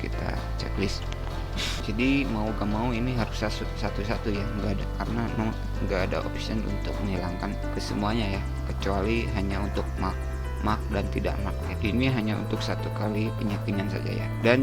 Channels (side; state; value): both; identical; correlation 1.00